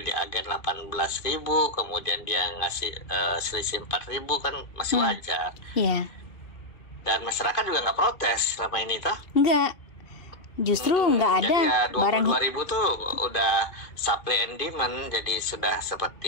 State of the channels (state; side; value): late; right; 2.5 ms